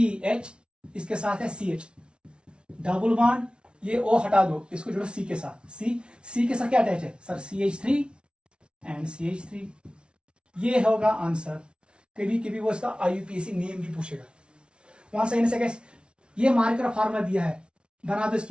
इसके साथ है CH, डबल बॉन्ड, ये O हटा दो, इसको जोड़ो C के साथ, C के साथ क्या अटैच है सर, CH3 एंड CH3, ये होगा आंसर। कभी कभी वो इसका IUPAC नेम भी पूछेगा, वहां से कैसे, ये मार्कर फार्मूला दिया है, बना दो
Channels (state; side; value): late; left; 0.057 ms